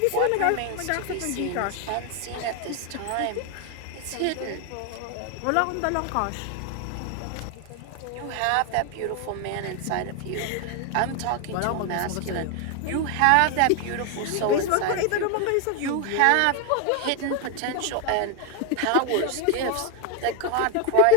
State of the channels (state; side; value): different; both; correlation 0.01